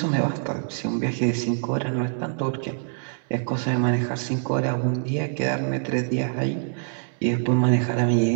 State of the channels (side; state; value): left; silent; 62 dB below the other